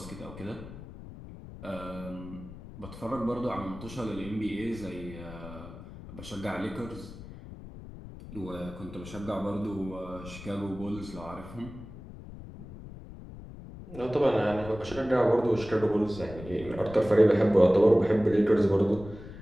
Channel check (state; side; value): noise; left; rumble, 14 dB below the sound